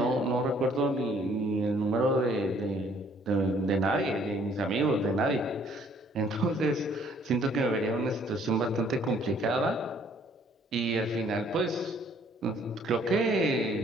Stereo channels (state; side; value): normal; both; correlation 0.61